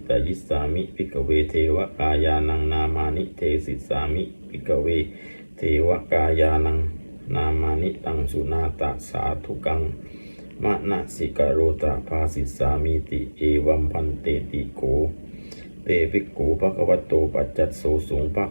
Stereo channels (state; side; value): inverted; both; correlation -1.00